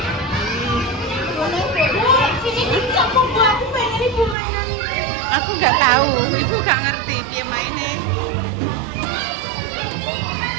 Aku gak tahu, ibu gak ngerti piye maine.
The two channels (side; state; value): left; drops out; at 4.4 s